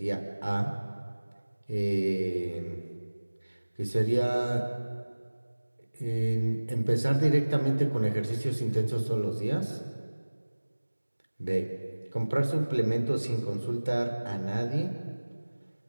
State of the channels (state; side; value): inverted; both; correlation -1.00